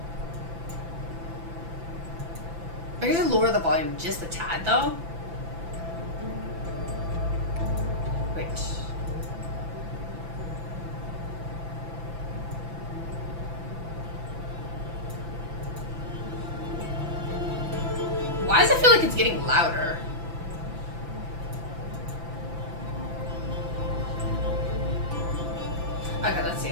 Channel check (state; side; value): late; left; 5.9 ms